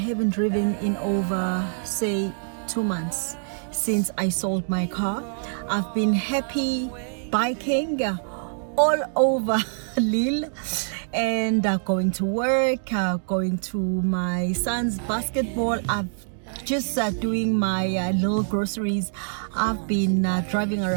driven in over, say, 2 months since I sold my car. I've been happy biking all over Lille and going to work, going to my son's basketball. I've just doing my little groceries. I've been driving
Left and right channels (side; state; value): left; silent; digital silence